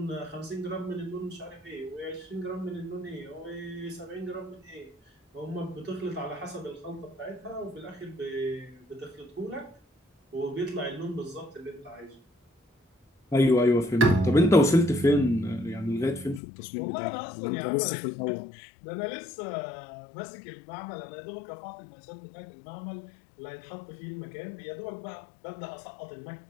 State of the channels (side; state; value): right; drops out; at 16.4 s